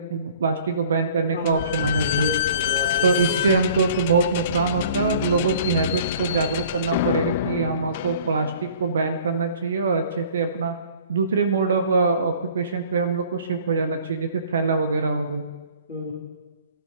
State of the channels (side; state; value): both; inverted; correlation -0.51